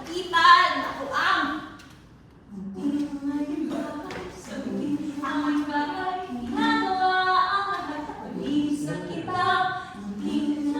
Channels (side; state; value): both; identical; correlation 1.00